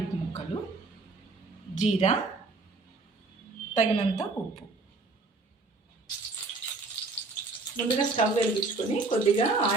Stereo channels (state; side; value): quieter; left; 3.6 dB